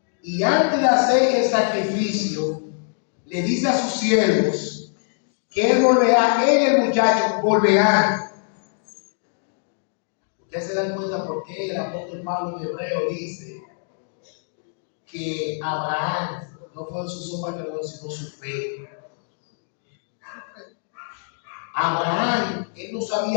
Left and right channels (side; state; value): right; silent; digital silence